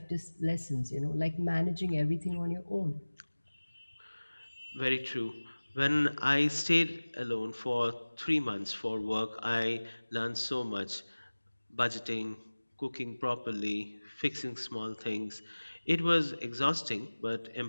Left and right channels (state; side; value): inverted; both; correlation -1.00